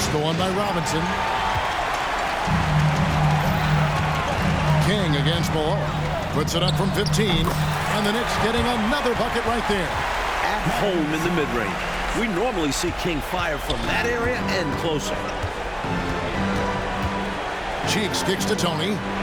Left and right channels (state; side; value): identical; both; correlation 1.00